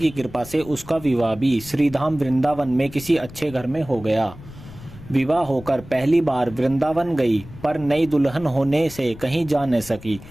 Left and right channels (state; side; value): noise; left; rumble, 17 dB below the sound